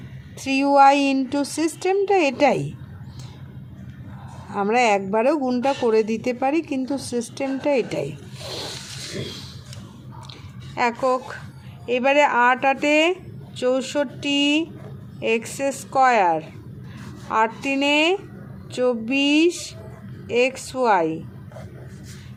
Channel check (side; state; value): both; identical; correlation 1.00